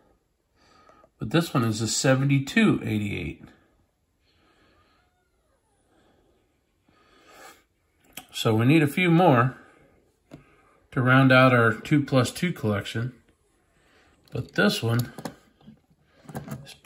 but this one is a 7288. So we need a few more to round out our 2+2 collection, but this one is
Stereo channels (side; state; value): both; identical; correlation 1.00